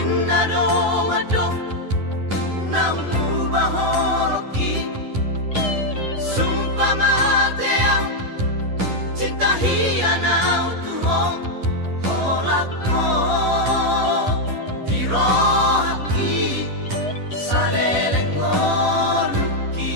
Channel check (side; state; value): left; late; 10 ms